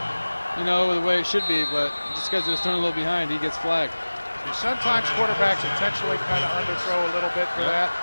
the way it should be. But just because it was thrown a little behind, he gets flagged. Sometimes quarterbacks intentionally kind of underthrow a little bit for that.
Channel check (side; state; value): both; inverted; correlation -1.00